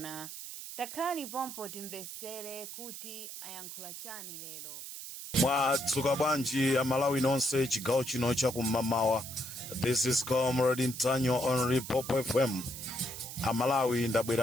Takhani pompo timvesere kuti ayankhula chani lero. Mwadzuka bwanji Amalawi nonse chigawo chino chakum'mawa. This is Comrade Ntanyiwa on Limpopo FM. Amalawi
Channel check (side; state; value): right; noise; hiss, 10 dB below the sound